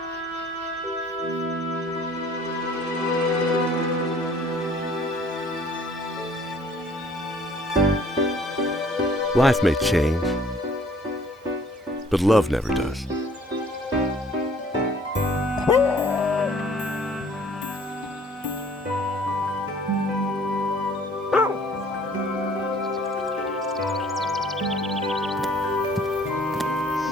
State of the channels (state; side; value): normal; both; correlation 0.56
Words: Life may change, but love never does.